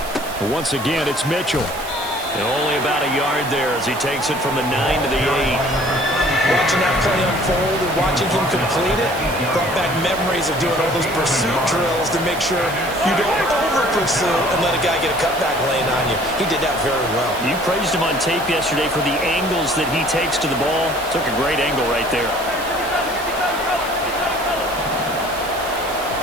But once again, it's Mitchell. And only about a yard there as he takes it from the 9 to the 8. Watching that play unfold and watching him complete it brought back memories of doing all those pursuit drills to make sure you don't overplay pursue and let a guy get a cutback lane on you. He did that very well. You praised him on tape yesterday for the angles that he takes to the ball. Took a great angle right there.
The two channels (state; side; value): noise; right; hiss, 13 dB below the sound